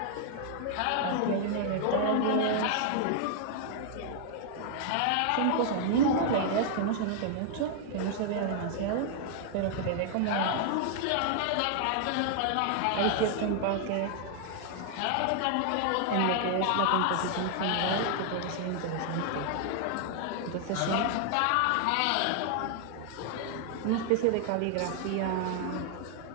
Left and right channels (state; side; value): different; both; correlation 0.00